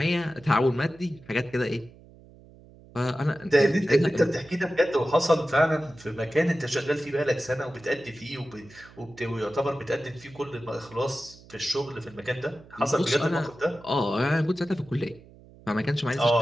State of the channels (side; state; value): right; noise; hum, 23 dB below the sound